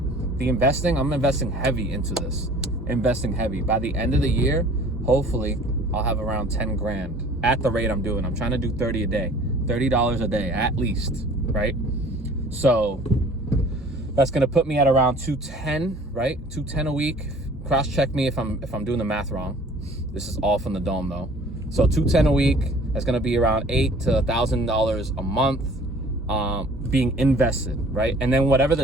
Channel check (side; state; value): both; normal; correlation 0.50